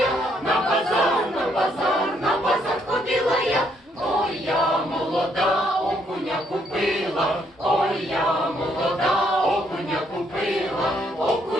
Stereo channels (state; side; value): normal; both; correlation 0.71